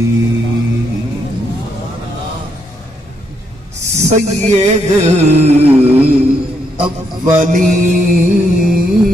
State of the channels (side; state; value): both; normal; correlation 0.76